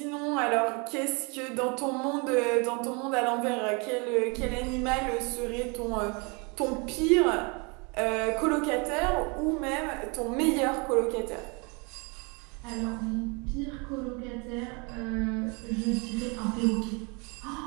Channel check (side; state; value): left; quieter; 31.1 dB